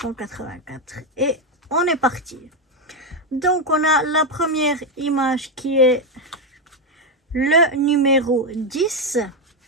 Et on est parti. Donc, on a la première image qui est le numéro 10.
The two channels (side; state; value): both; normal; correlation 0.06